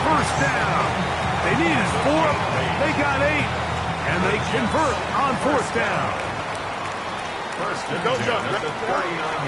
first down. They needed 4, they got 8, and they convert on 4th down.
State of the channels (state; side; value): identical; both; correlation 1.00